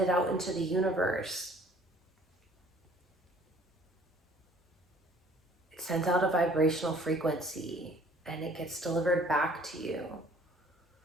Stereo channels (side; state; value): both; normal; correlation 0.55